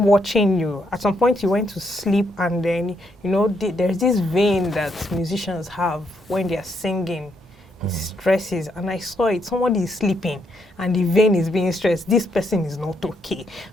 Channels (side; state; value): both; normal; correlation 0.76